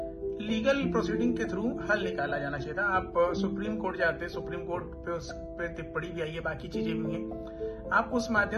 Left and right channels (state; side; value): identical; both; correlation 1.00